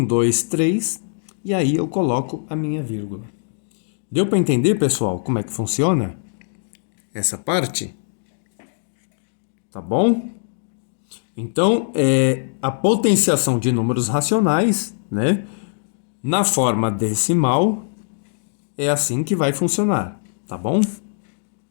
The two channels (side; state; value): right; silent; digital silence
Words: 2, 3, e aí eu coloco a minha vírgula. Deu para entender, pessoal, como é que funciona essa parte? Tá bom? Então, a potenciação de números racionais, né, na forma decimal, é assim que vai funcionar, tá bom?